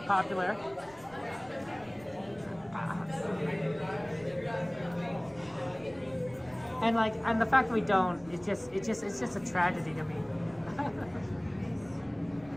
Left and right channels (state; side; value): noise; right; rumble, 24 dB below the sound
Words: And the fact that we don't, it's just a tragedy to me.